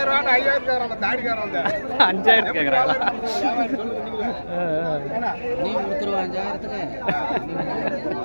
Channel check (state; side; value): inverted; both; correlation -1.00